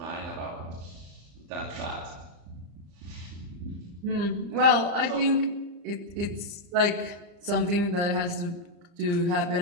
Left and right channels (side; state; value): left; late; 34 ms